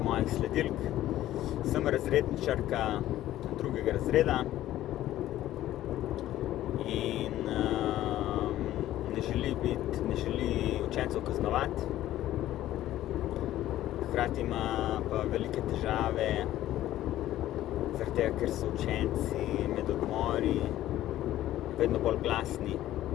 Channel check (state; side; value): quieter; right; 13.8 dB